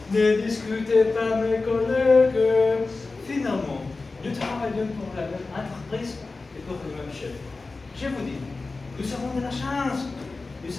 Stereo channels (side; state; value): right; quieter; 3.7 dB